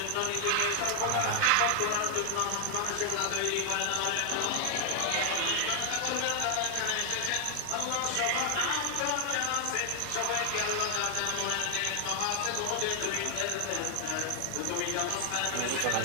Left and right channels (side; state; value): both; different; correlation 0.00